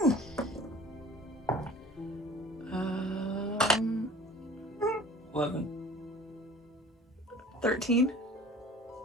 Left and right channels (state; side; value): normal; both; correlation 0.45